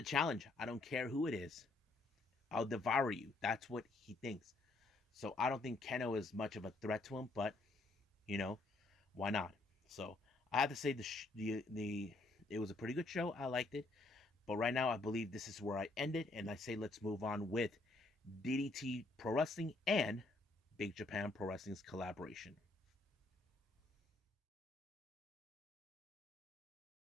challenge. I don't care who it is. I'll devour you. That's what he thinks. So I don't think Keno is much of a threat to him, but you know, why not? So I have to say the it was a pretty good show. I liked it, but right now I believe this is where I end it, and I say let's move on with DDT Pro Wrestling and Big Japan Pro Wrestling's collaboration.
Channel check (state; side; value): quieter; right; 3.1 dB